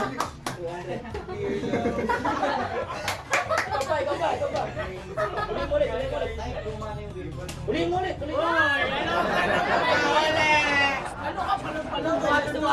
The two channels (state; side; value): identical; both; correlation 1.00